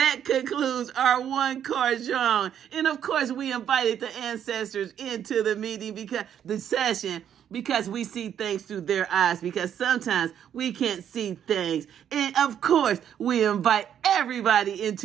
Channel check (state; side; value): quieter; left; 9.4 dB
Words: concludes our one-car genre. And of course, we invited the ancestors into the meeting because we see things through their eyes, because sometimes we can't see things. And of course, we invite everybody